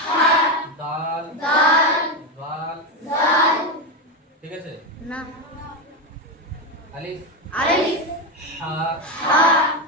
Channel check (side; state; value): both; normal; correlation 0.12